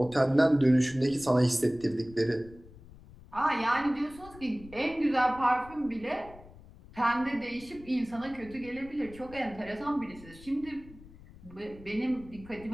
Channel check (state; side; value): noise; left; rumble, 20 dB below the sound